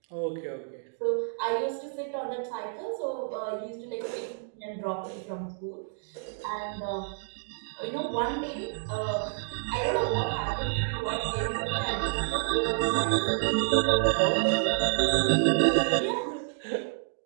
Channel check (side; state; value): left; silent; digital silence